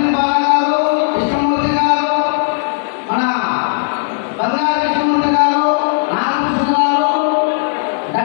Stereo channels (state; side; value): silent; right; digital silence